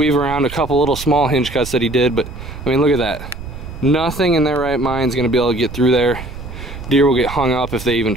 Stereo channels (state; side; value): noise; right; rumble, 11 dB below the sound